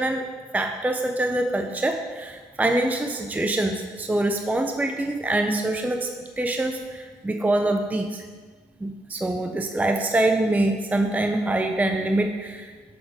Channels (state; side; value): normal; both; correlation 0.80